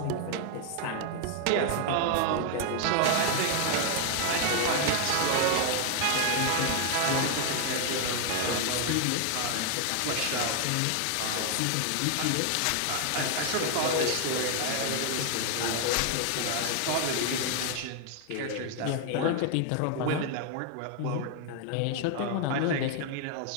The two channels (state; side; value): different; both; correlation 0.00